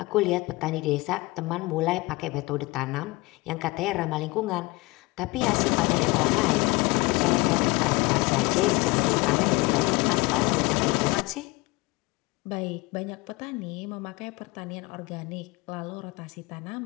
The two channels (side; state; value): right; quieter; 23.0 dB